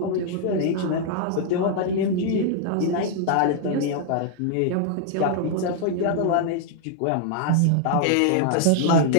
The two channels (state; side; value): different; both; correlation -0.01